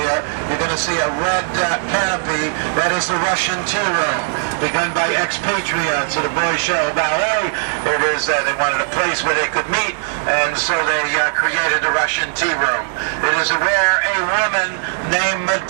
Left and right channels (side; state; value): left; silent; 67 dB below the other